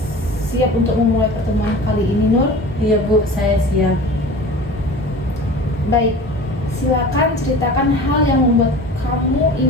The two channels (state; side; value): normal; both; correlation 0.38